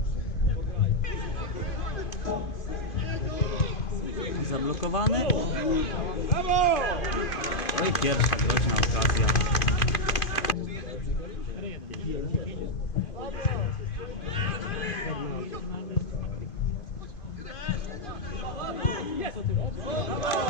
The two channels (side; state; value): right; late; 2.5 ms